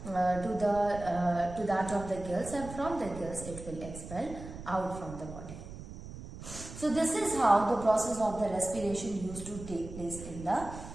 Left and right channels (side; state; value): right; noise; rumble, 12 dB below the sound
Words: of the gills, and from the gills it will expel out from the body. So this is how the process of the respiration used to take place in the